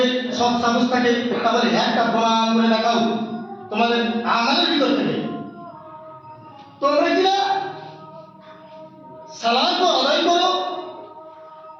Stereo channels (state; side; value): identical; both; correlation 1.00